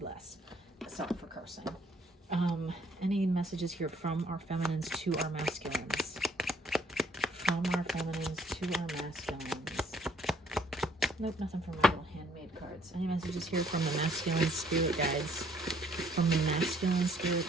Sorry for cursing. Any messages here from our feminines to our masculines? From our feminines to our masculines. Nope, nothing from my little handmade cards. Any messages here from the masculine spirit guides? From the masculine spirit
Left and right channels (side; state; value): both; normal; correlation 0.63